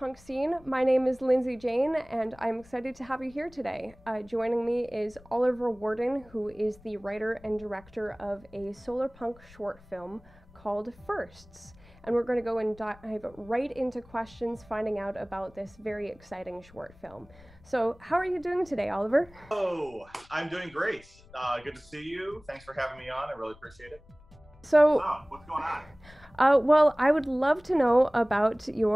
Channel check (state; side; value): noise; left; rumble, 25 dB below the sound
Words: scene. My name is Lindsay Jane and I'm excited to have you here today. Joining me is Oliver Warden, who is the writer and director of a Solarpunk short film called Firsts. And we're going to go and dive right into questions, finding out about this very exciting short film. So how are you doing today, Oliver? Oh, I'm doing great. Good to see you. Thanks for having me on. I really appreciate it. So, what's going on? Well, I would love to know about